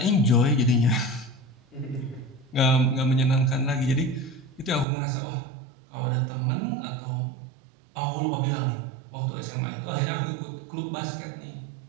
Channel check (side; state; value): left; drops out; at 4.9 s